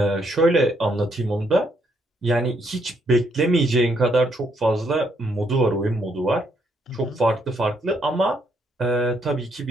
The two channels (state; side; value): normal; both; correlation 0.73